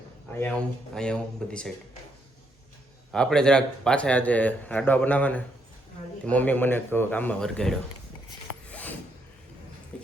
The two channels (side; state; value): both; normal; correlation 0.75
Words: અહીંયા હું બધી સાઈડ આપણે જરાક પાછા આજે લાડવા બનાવવાને, મમ્મી મને કામમાં વરગાડ્યો